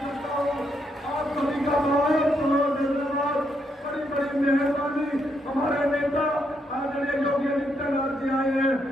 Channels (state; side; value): normal; both; correlation 0.77